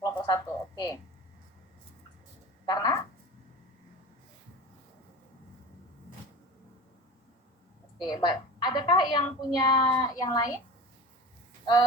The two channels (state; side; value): normal; both; correlation 0.34